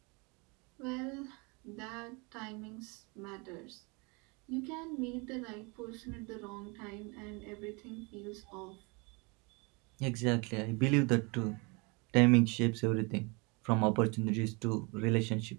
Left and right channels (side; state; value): left; quieter; 29.5 dB